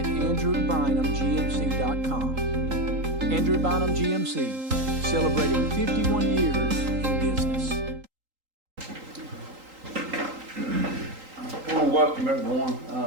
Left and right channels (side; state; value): left; late; 3.8 ms